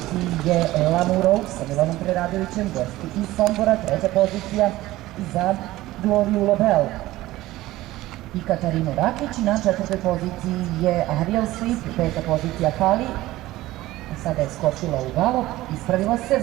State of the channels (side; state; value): left; quieter; 16.9 dB